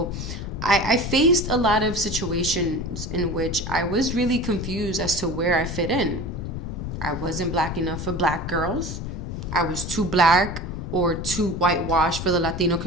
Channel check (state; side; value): noise; left; rumble, 6 dB below the sound